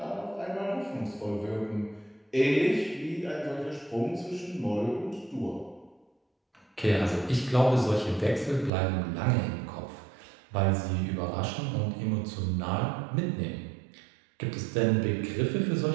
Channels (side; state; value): left; drops out; at 8.7 s